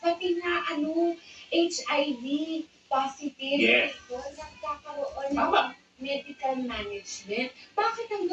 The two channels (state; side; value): identical; both; correlation 1.00